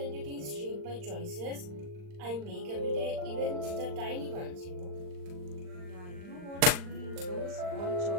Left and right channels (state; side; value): late; left; 39 ms